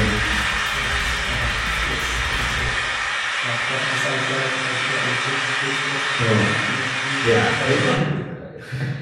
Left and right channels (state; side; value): identical; both; correlation 1.00